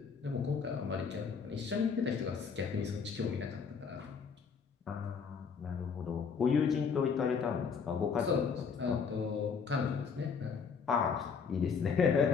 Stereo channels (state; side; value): quieter; right; 5.9 dB